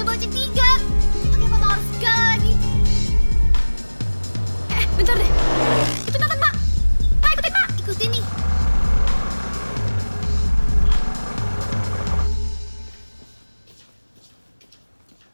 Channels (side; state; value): both; inverted; correlation -1.00